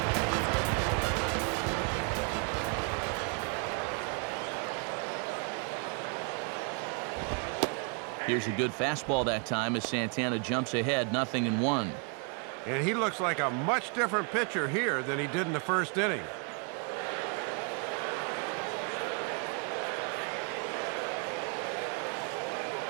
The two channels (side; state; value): left; quieter; 37.2 dB